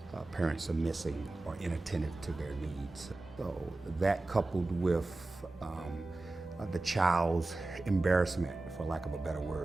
Parents are missing or inattentive to their needs. So that coupled with the child's embarrassment, for lack of a better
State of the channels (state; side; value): quieter; left; 3.0 dB